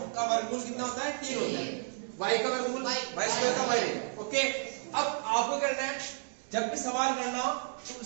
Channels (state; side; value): silent; left; digital silence